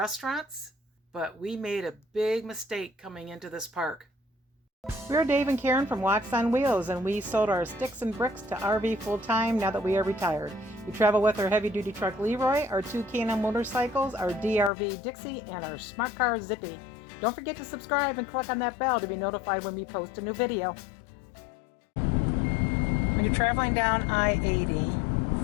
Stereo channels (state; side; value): drops out; right; at 14.7 s